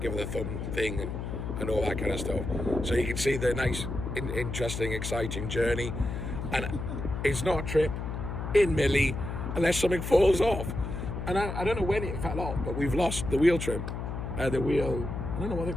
her the thumb thing and all that kind of stuff. So you can see the nice, interesting, exciting journey. And it's not a trip in Millie unless something falls off. And I don't know when it fell off, but we've lost the wheel trim. The wheel, I don't know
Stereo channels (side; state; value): left; noise; hum, 5 dB below the sound